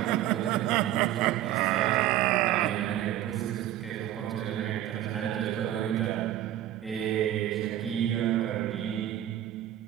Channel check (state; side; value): quieter; left; 12.8 dB